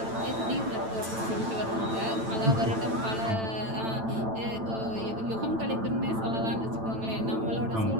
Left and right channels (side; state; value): left; late; 9.0 ms